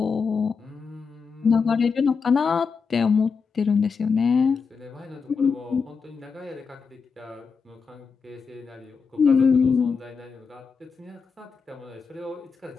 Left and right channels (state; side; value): quieter; right; 5.4 dB